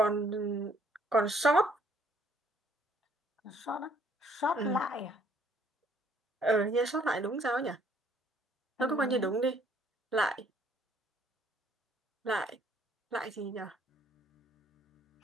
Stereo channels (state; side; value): normal; both; correlation 0.63